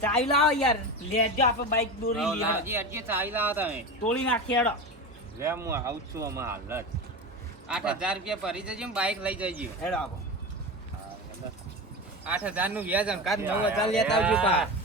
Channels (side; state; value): both; normal; correlation 0.24